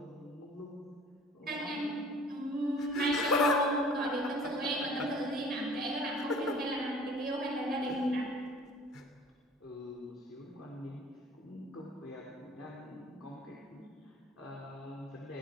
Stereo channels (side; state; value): both; normal; correlation 0.49